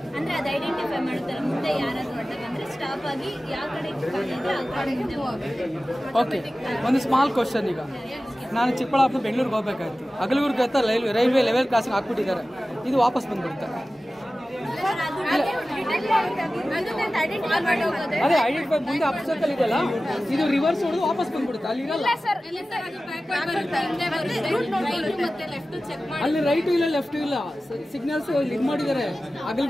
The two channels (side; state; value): both; normal; correlation 0.96